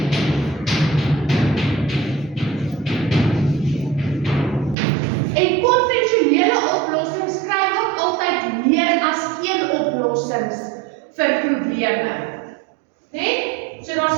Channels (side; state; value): left; drops out; at 4.8 s